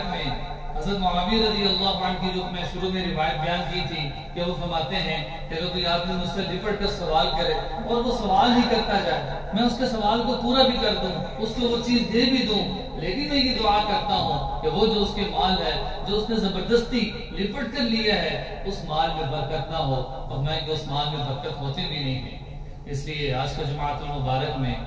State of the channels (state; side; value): identical; both; correlation 1.00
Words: میں حضرت معاویہ رضی اللہ عنہ کی جو میں شروع میں روایت بیان کی تھی کہ وہ فرماتے ہیں کہ اگر کوئی آدمی مجھ سے لپٹ کر سوال کرے اور وہ سوال ہی کرتا جائے، میں اس کے سوال کو پورا بھی کر دوں، اس کو وہ چیز دے بھی دوں، لیکن میں یہ دعا کرتا ہوں کہ وہ جو اس کے مال ہے جو اس نے زبردستی لپٹ کر لیا ہے اس مال میں برکت نہ ہو، اور میں کہ اس مال میں برکت ہوتی بھی نہیں ہے۔ اس لیے آج کا جماعت المبارک میں